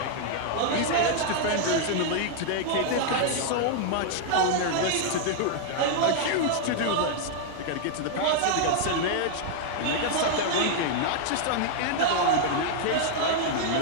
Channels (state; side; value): different; both; correlation 0.00